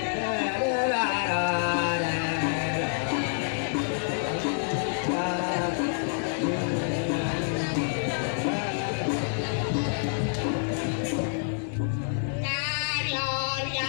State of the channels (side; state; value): right; silent; 60 dB below the other